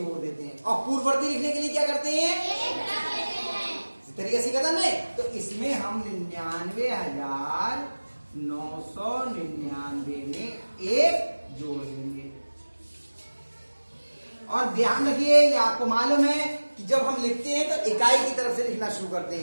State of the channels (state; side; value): inverted; both; correlation -1.00